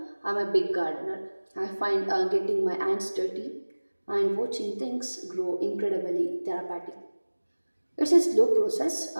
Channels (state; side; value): inverted; both; correlation -1.00